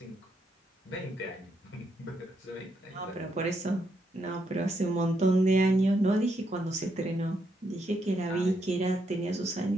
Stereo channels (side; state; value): both; normal; correlation 0.78